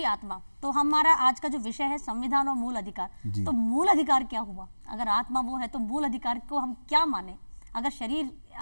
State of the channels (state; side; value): inverted; both; correlation -1.00